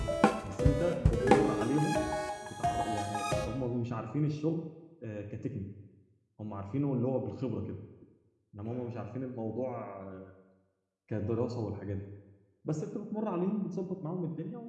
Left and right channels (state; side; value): identical; both; correlation 1.00